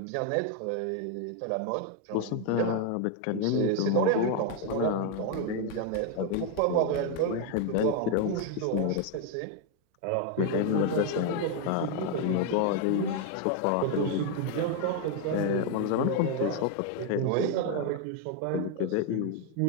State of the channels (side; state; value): both; different; correlation 0.01